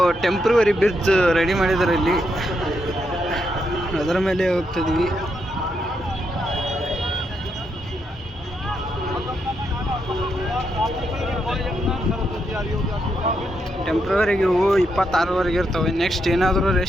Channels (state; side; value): normal; both; correlation 0.80